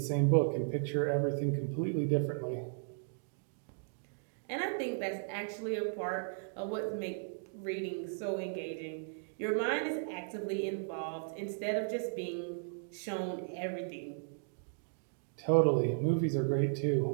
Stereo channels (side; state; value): left; silent; digital silence